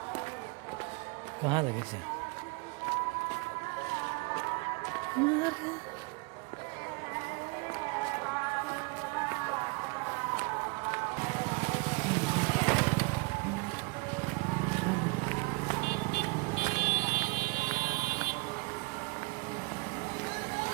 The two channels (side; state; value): left; quieter; 29.3 dB